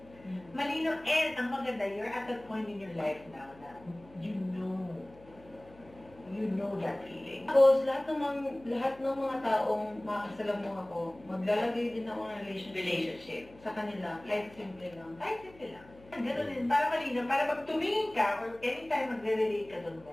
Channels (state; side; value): noise; left; hum, 23 dB below the sound